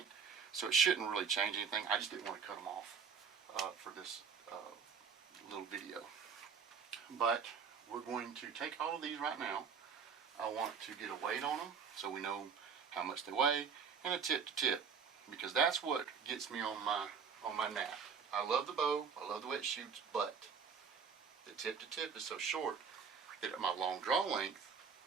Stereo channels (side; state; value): left; quieter; 6.2 dB